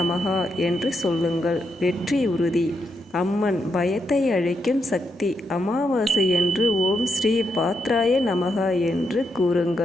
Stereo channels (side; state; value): both; normal; correlation 0.81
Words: என்று சொல்லுங்கள். வெற்றி உறுதி. அம்மன். பயத்தை அழிக்கும் சக்தி. அமாவாசை என்று ஓம் ஸ்ரீ பாத்ராய நமகா என்று